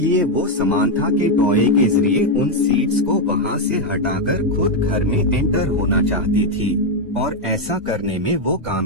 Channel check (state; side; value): normal; both; correlation 0.03